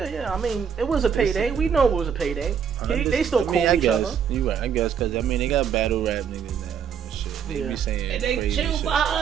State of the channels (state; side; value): quieter; left; 7.4 dB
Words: I mean, it was a payday. We know it was a payday. They still call each other. You right, I guess, because I mean they got battle rap niggas now and shit. They be saying and they crazy chill shit.